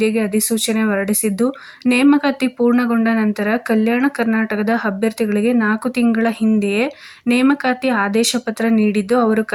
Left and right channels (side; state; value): both; identical; correlation 1.00